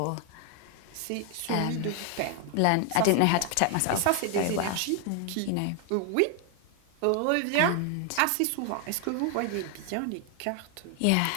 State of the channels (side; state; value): both; different; correlation 0.00